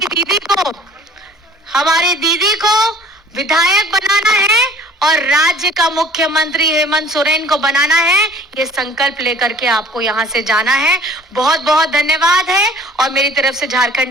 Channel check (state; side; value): normal; both; correlation 0.50